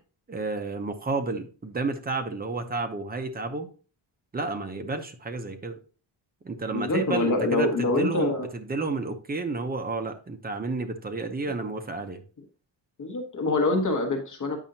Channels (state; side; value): normal; both; correlation 0.14